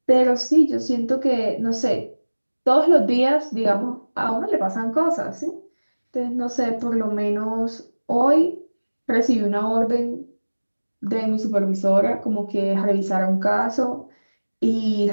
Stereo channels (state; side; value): inverted; both; correlation -1.00